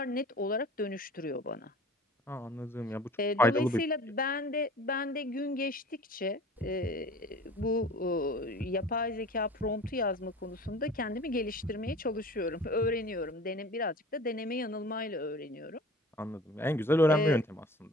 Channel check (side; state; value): both; normal; correlation 0.42